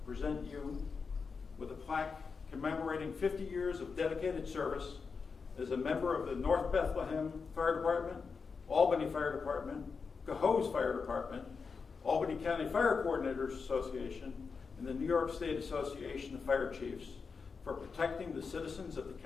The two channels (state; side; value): quieter; right; 5.2 dB